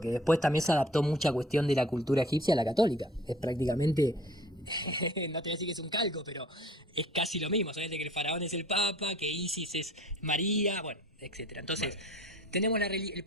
después también se adaptó mucha cuestión de la cultura egipcia a la católica. Es prácticamente, no te voy a decir que es un calco, pero es casi lo mismo. Solamente que el faraón es el papa, que Isis es María, bueno, etcétera. Entonces, tenemos el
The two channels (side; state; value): both; normal; correlation 0.50